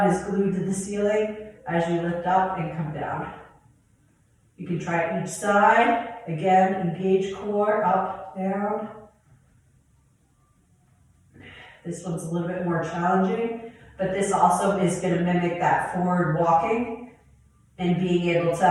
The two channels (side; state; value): both; identical; correlation 1.00